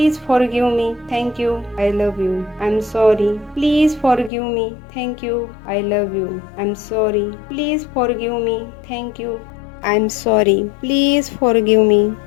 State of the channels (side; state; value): right; drops out; at 4.3 s